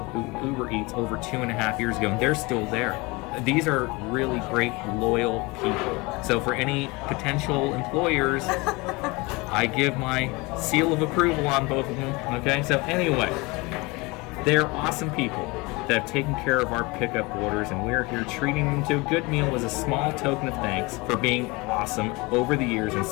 UberEats over 2.5 years ago, and they're still there. These are really great, loyal people. So for any potential employers, I give my seal of approval on both of them. Okay, so anyway, they're awesome people that have taken care of our pickup orders, and we're here treating them to a good meal as a small token of thanks for being awesome over the years and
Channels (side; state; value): right; quieter; 24.9 dB